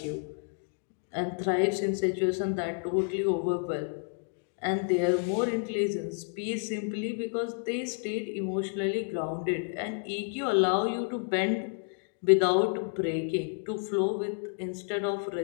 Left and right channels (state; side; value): silent; right; 58 dB below the other